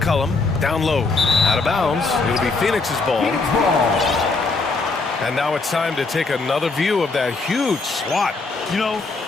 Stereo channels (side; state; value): right; quieter; 3.9 dB